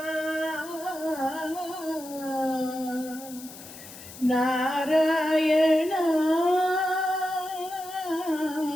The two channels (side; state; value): left; noise; hiss, 16 dB below the sound